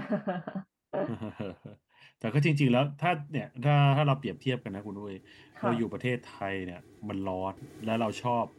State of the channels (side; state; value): both; identical; correlation 1.00